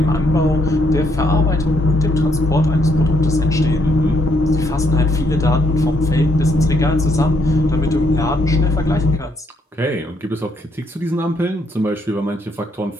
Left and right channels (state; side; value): normal; both; correlation 0.73